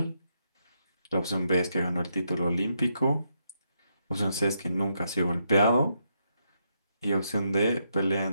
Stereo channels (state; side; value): inverted; both; correlation -0.80